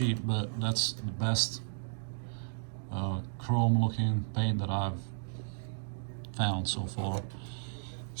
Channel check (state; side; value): silent; left; digital silence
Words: but that's the best chrome looking paint that I've found so far.